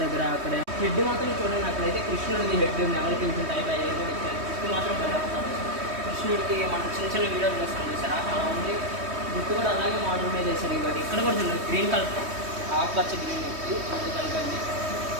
దగ్గర అక్కడ హెడ్ మాత్రం చూడండి. అక్కడైతే కృష్ణుడిది హెడ్ నెవలి పింఛన్ టైప్ అయ్యేది కూడా ఇచ్చారు. కృష్ణుడు మాత్రం బయటపడతారు. కృష్ణుడికి మనం చిన్న చిన్న వీడియోలు చేస్తాం చూసారా, అలా ఉంది. గుట్టు కూడా అలాగే మోడల్ మీద చేశారు. ఇవ్వండి ఇక్కడ కూడా చూడండి, గ్రీన్ కలర్ ఆకుపచ్చ గ్రీన్ వచ్చి అది కలిపండి.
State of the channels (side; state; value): left; late; 3.2 ms